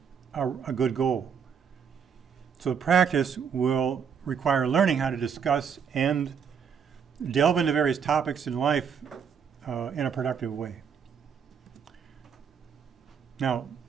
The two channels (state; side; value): quieter; left; 7.0 dB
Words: a good goal. So the practice will require learning how to discuss and delve into various topics in life in a productive way. Now,